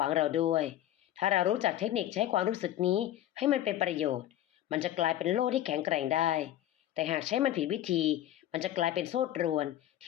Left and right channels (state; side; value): quieter; right; 12.8 dB